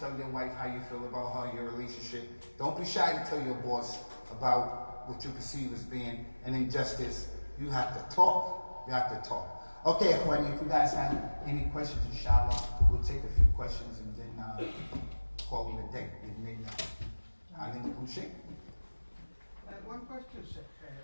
your wife how you feel about your relationship. Don't be shy to tell your boss about what you perceive as being an injustice. You have to talk. You have to talk. Okay, Akhwani, if you guys have any questions, inshallah, we'll take a few questions and then call it a day. IslamicCentre. Sheikh? One question, Sheikh.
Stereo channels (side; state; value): both; inverted; correlation -1.00